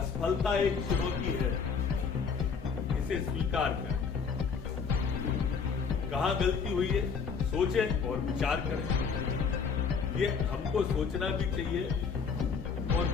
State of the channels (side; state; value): right; quieter; 5.8 dB